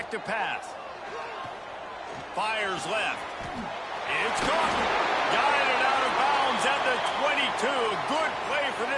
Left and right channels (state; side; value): identical; both; correlation 1.00